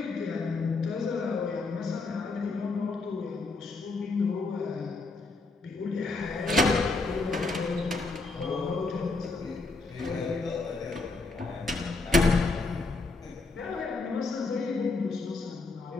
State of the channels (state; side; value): quieter; right; 3.7 dB